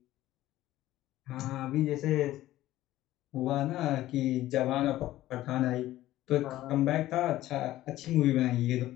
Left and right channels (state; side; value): quieter; right; 15.0 dB